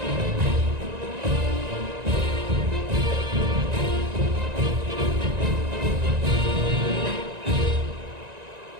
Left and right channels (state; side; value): late; left; 1.9 ms